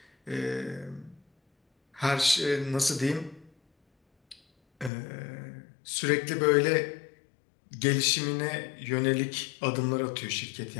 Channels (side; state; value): right; drops out; at 4.9 s